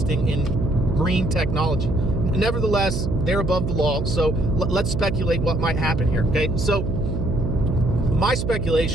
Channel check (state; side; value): noise; right; hum, 1 dB below the sound